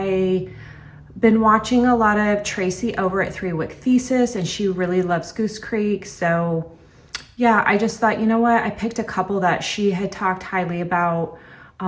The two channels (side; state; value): both; identical; correlation 1.00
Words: been watching a lot of Tracy over at 3 Wick Thesis, and she really loves Goose Creek. So yeah, I just thought, you know what? I picked a couple that she had talked highly about.